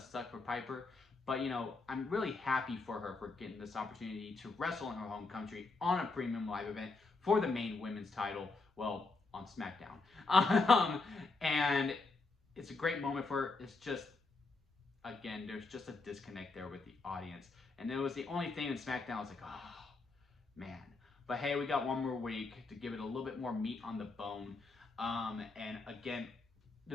suck for Piper. But, I'm really happy for her for getting this opportunity to wrestle in her home country on a premium live event for the main women's title, well, on SmackDown. And it's a great moment for her. It's just, again, there's just a disconnect there with the audience. And it was the only thing in SmackDown I was like, oh, man. But, hey, we got one more week to give it a little bit more meat on the bone. And, again,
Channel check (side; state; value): right; quieter; 3.8 dB